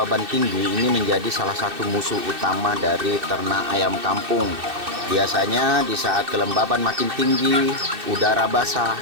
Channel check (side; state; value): left; late; 2.6 ms